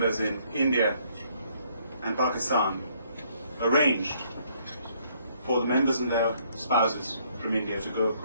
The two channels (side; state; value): both; inverted; correlation -0.67